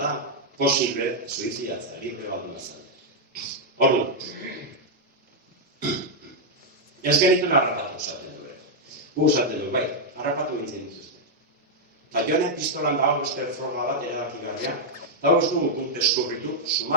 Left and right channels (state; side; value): normal; both; correlation -0.03